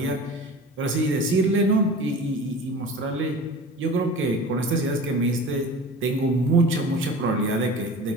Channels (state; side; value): normal; both; correlation 0.37